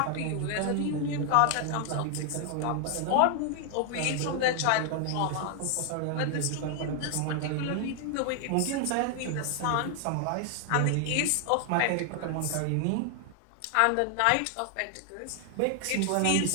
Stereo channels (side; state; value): both; different; correlation 0.00